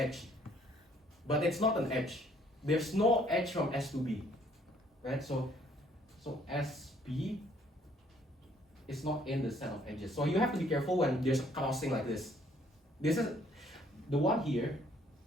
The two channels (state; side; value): normal; both; correlation 0.63